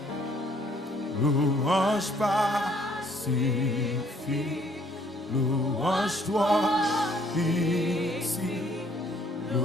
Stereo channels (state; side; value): normal; both; correlation 0.63